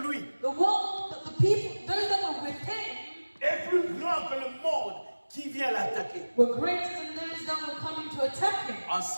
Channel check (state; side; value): inverted; both; correlation -1.00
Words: lui The world, the people, those that were with him, est plus grand que le monde qui vient l'attaquer. were greater than those that were coming to attack him. En